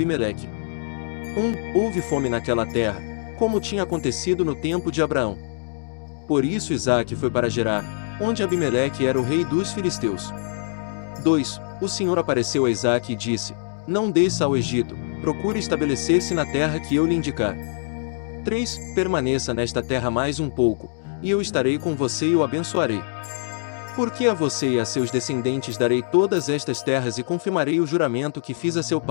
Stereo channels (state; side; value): silent; right; digital silence